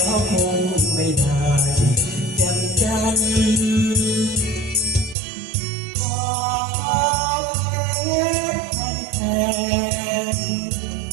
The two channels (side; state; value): left; drops out; at 5.2 s